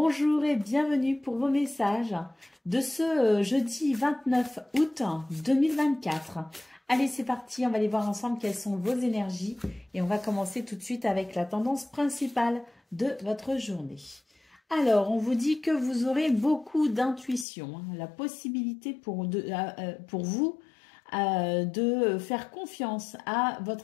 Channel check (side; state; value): right; drops out; at 17.4 s